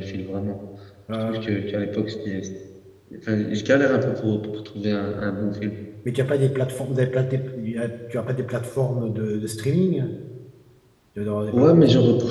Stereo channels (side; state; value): both; identical; correlation 1.00